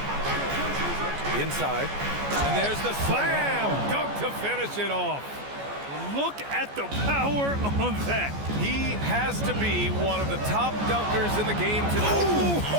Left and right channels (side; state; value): left; late; 14 ms